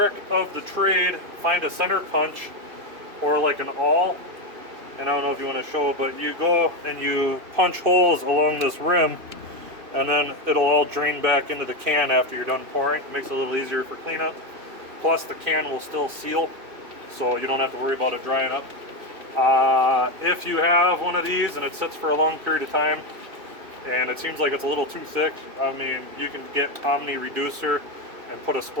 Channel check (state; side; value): late; left; 2.6 ms